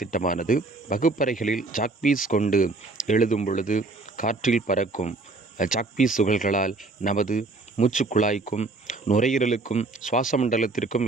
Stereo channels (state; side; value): quieter; left; 3.4 dB